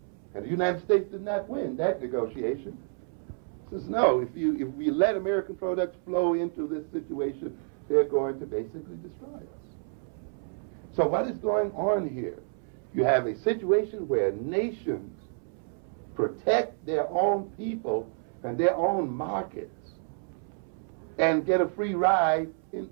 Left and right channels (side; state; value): left; silent; 58 dB below the other